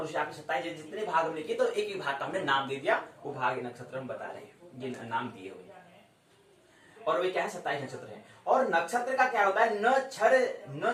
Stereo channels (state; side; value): identical; both; correlation 1.00